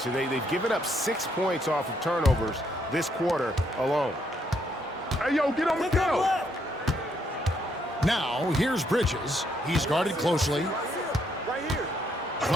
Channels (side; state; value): both; normal; correlation 0.73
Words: They've given up 6 points off of turnovers this quarter alone. Hey, yo, get on the go. Now, here's Bridges. He's guarded closely.